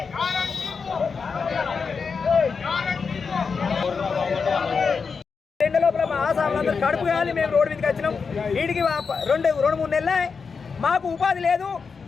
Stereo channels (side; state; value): right; quieter; 5.3 dB